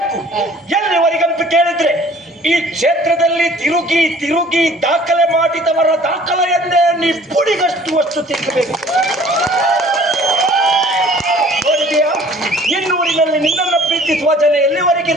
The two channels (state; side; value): normal; both; correlation 0.52